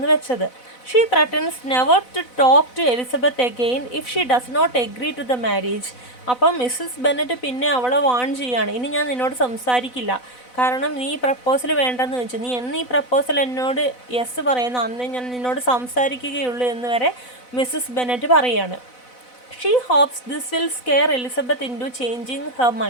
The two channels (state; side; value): late; right; 4.0 ms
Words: വെച്ചത്. She threatens never to talk to Elizabeth again if she does not agree to the marriage. അപ്പം Mrs Bennet പിന്നെ അവളെ വാൺ ചെയ്യാണ്, ഇനി ഞാൻ നിന്നോട് സംസാരിക്കില്ല, കാരണം നീ പ്രപ്പോസൽ വേണ്ടെന്ന് വെച്ചു, നീ എന്ന് ഈ പ്രപ്പോസൽ എന്നോട് യെസ് പറയുന്നു അന്ന് ഞാൻ നിന്നോട് സംസാരിക്കുകയുള്ളൂ എന്ന് വരെ മിസ്സസ് ബെന്നറ്റ് പറയാണ്. She hopes this will scare Elizabeth into changing her